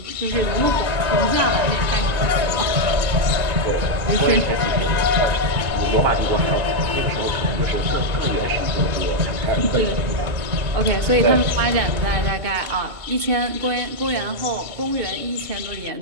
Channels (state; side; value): late; left; 2.2 ms